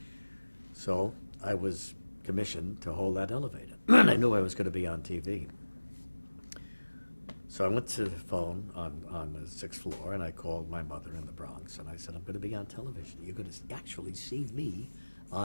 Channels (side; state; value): both; inverted; correlation -1.00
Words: So I was commissioned to hold that elevator. And I knew I was going to be on TV. So I went to the phone on the 6th floor, and I called my mother in the Bronx, and I said, I'm going to be on television. You're going to actually see me